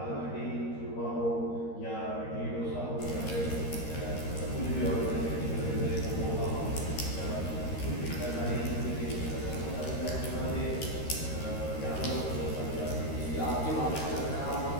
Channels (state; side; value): late; right; 13 ms